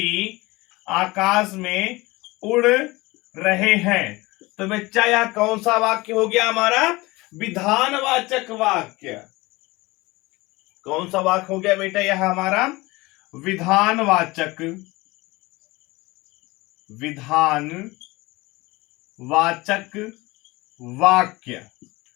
आकाश में उड़ रहे हैं। तो बच्चा यह कौन सा वाक्य हो गया हमारा, विधानवाचक वाक्य। कौन सा वाक्य हो गया बेटा, यह हमारा विधानवाचक वाक्य।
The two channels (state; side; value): quieter; right; 21.8 dB